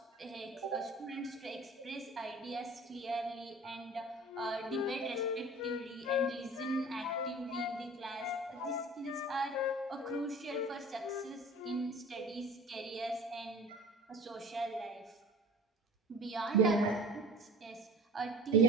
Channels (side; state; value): both; normal; correlation 0.42